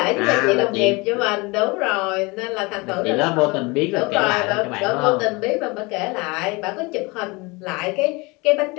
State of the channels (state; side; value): quieter; right; 25.8 dB